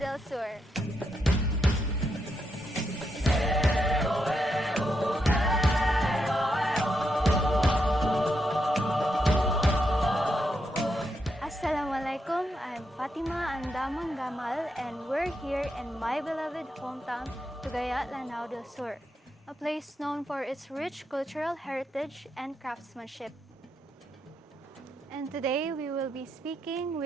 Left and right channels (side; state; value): both; normal; correlation 0.82